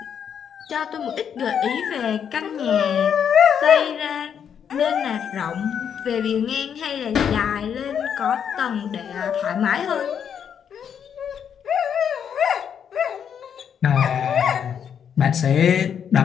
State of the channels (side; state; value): right; quieter; 8.0 dB